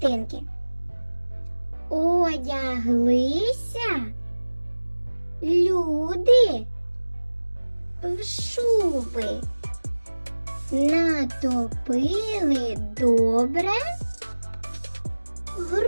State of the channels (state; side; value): inverted; both; correlation -1.00